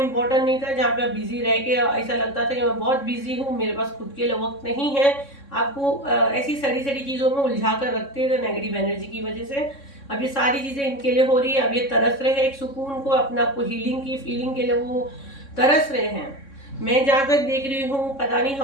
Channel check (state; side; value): late; right; 3.6 ms